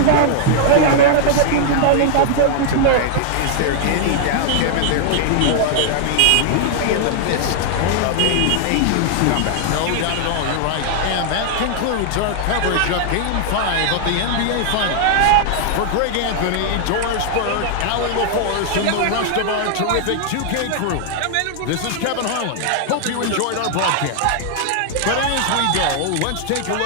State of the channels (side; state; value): both; different; correlation -0.01